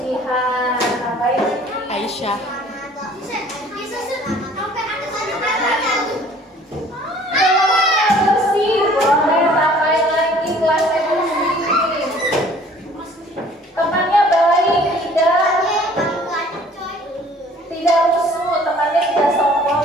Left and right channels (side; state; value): both; normal; correlation 0.53